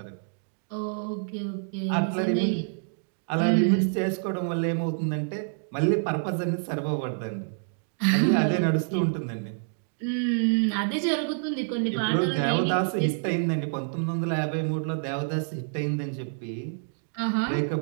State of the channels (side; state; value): left; silent; digital silence